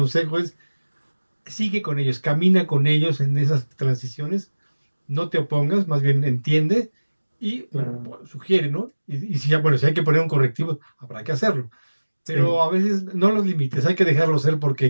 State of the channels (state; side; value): inverted; both; correlation -1.00